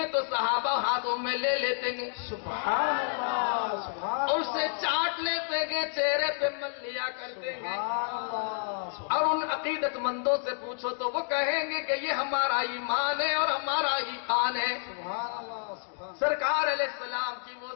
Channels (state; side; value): silent; right; digital silence